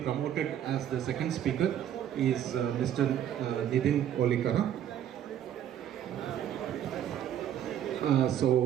promoted as the second speaker, is Mr. Nidhin Olikara.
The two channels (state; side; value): quieter; left; 10.4 dB